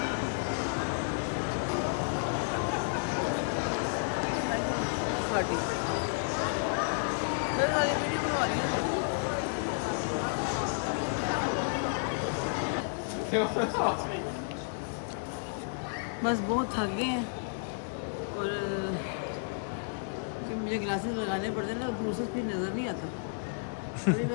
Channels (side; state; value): right; silent; digital silence